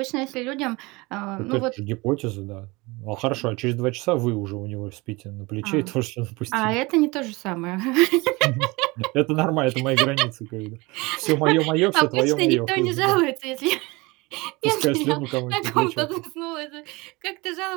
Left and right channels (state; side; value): quieter; left; 24.0 dB